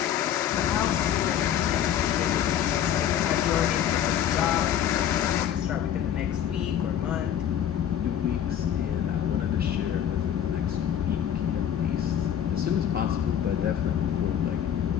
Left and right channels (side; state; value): right; quieter; 9.9 dB